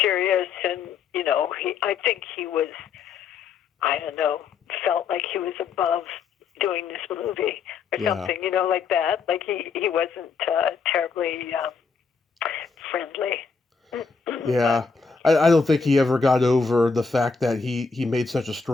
serious. And, I think he was, I don't know, felt like he was above doing this movie or something, like that. Like he wasn't terribly friendly. Yeah. I don't think he ever got over the fact that he made such a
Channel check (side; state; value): right; quieter; 5.2 dB